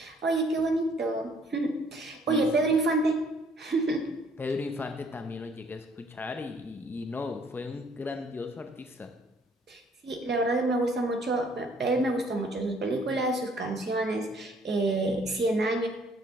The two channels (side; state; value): both; normal; correlation 0.61